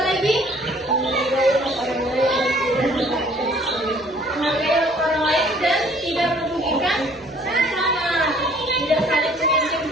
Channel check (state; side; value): normal; both; correlation 0.57